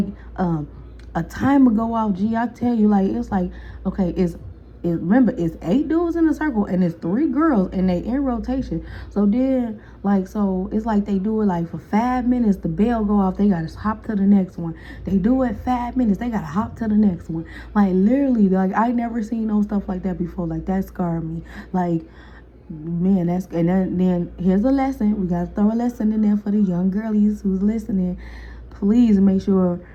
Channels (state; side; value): identical; both; correlation 1.00